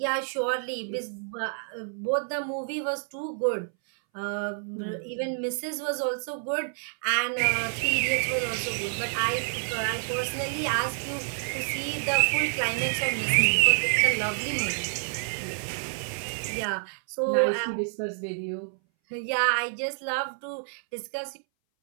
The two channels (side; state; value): left; silent; 59 dB below the other